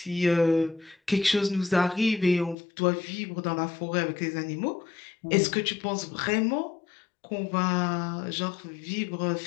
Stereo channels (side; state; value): right; drops out; at 2.6 s